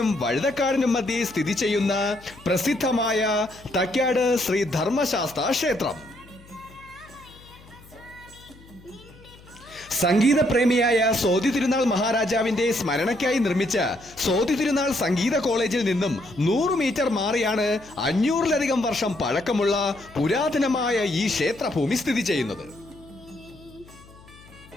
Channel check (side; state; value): left; noise; hum, 23 dB below the sound